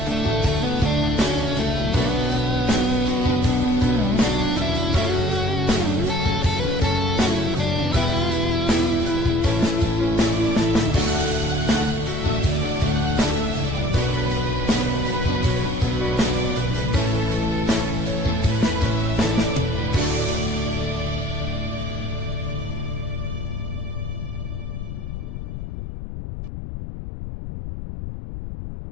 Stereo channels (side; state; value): left; noise; rumble, 7 dB below the sound